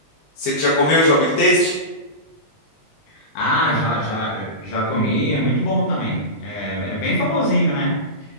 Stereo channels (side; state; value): right; late; 20 ms